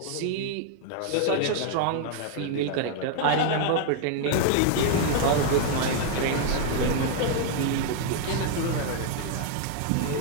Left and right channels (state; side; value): different; both; correlation 0.00